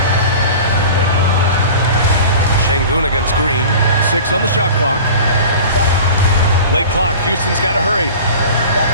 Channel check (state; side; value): inverted; both; correlation -0.39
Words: Şengün against Green. 6 on the shot clock. Late clock, Houston's got to hurry.